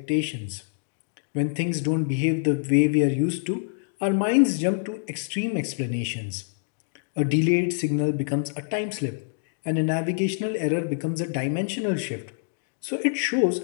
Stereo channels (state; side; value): silent; right; digital silence